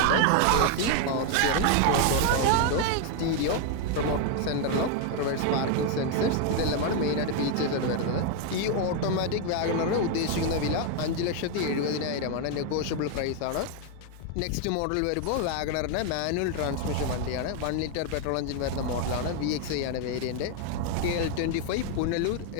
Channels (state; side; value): different; both; correlation 0.01